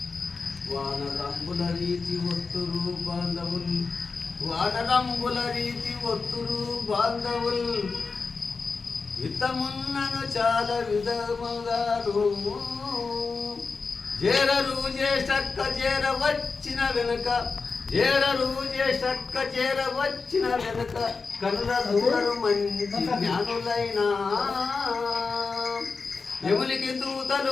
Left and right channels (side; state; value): right; quieter; 4.6 dB